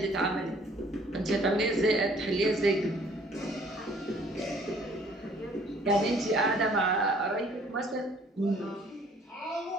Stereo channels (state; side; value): normal; both; correlation 0.57